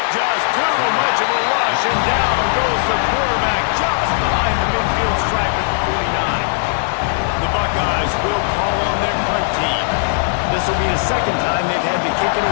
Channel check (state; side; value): silent; right; 68 dB below the other